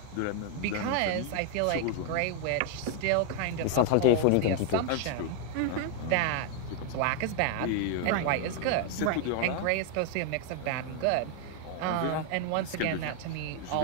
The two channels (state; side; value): different; both; correlation 0.00